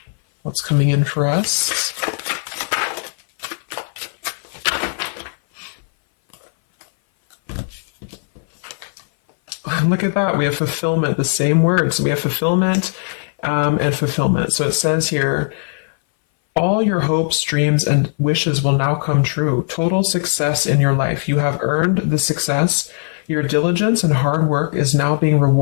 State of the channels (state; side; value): silent; right; 59 dB below the other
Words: What's coming in for us? Look at that. We have fulfillment, the same words. We have fulfillment and fulfillment. So it says here, all your hopes, dreams, and wishes will now come true. Total success in your life. You have earned the success. Your diligence and hard work is now being